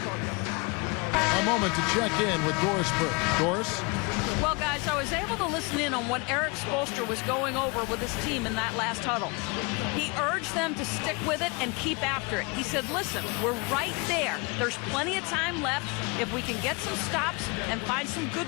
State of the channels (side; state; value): right; quieter; 29.5 dB